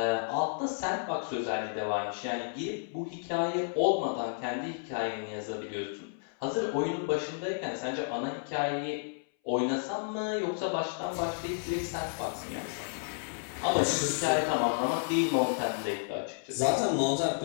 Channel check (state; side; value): silent; right; 57 dB below the other